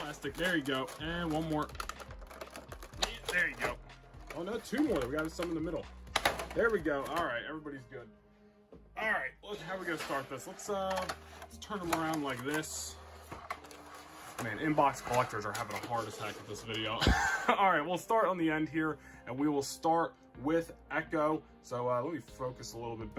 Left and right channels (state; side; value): identical; both; correlation 1.00